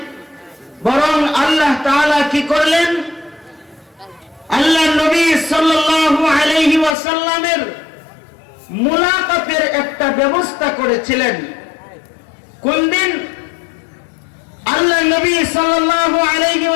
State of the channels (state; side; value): drops out; right; at 7.0 s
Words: বরং আল্লাহ তাআলা কি করলেন? আল্লাহ নবী সাল্লাল্লাহু আলাইহি ওয়াসাল্লামের মুলাকাতের একটা ব্যবস্থা করেছিলেন। কোন দিন? আল্লাহ নবী সাল্লাল্লাহু আলাইহি